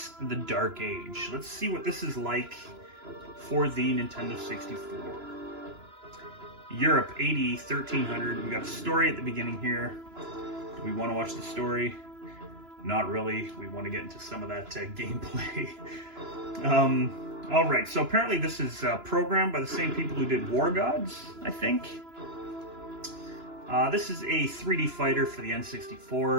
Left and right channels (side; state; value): left; late; 2.9 ms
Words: The Dark Age. Let's see what this is like for the Nintendo 64. Europe, AD 1300. We got a story at the beginning here. Do we want to watch the story? Not really. We want to get into some of that gameplay. All right, so apparently this is programmed by the same people who did War Gods, I think. This is a 3D fighter for the